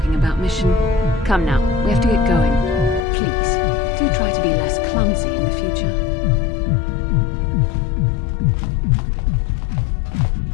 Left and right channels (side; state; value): right; drops out; at 3.1 s